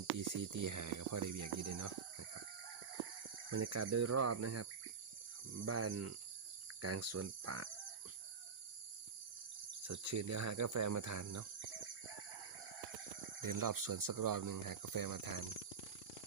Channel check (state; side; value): quieter; left; 5.9 dB